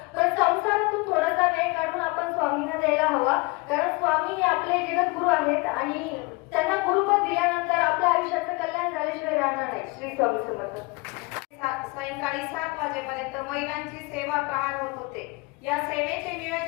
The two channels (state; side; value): quieter; right; 26.0 dB